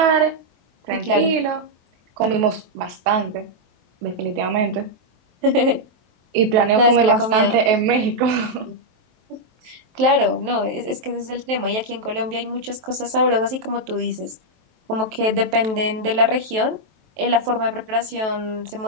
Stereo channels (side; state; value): left; late; 23 ms